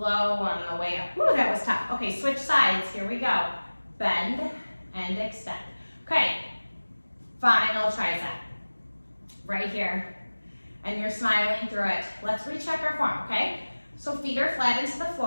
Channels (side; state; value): both; inverted; correlation -1.00